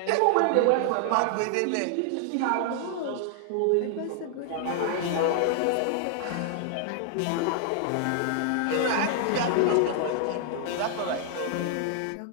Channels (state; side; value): different; both; correlation 0.00